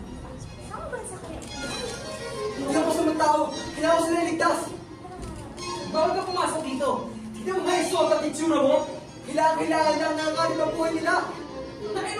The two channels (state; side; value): identical; both; correlation 1.00